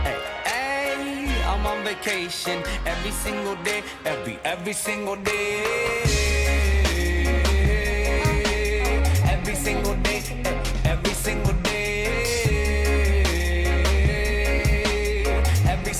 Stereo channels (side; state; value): both; identical; correlation 1.00